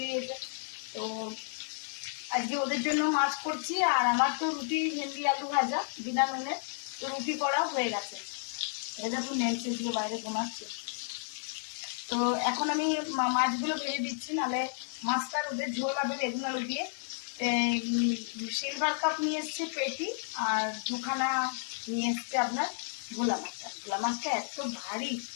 দিয়েছে। তো আজকে ওদের জন্য মাছ করছি, আর আমার তো রুটি ভেন্ডি আলু ভাজা বিনা নুনে, তো রুটি করা হয়ে গেছে। দেখুন নেলছে দিয়ে বাইরে ঘুমাচ্ছে। তো এখন আমি মাছগুলো ভেজে দিচ্ছি, নাহলে মাছটার ওদের ঝোল হবে বেগুন আলু দিয়ে। সিলভার কাপ নিয়ে এসছে পেটি, আর দুখানা নিয়ে এসছে আপনার ভোলা মাছটা। ভোলা মাছটা এত ভারী,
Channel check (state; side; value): silent; right; digital silence